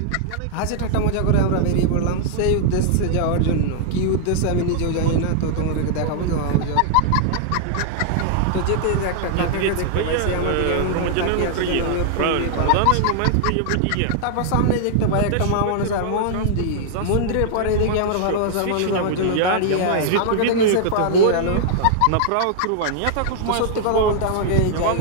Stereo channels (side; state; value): both; different; correlation -0.01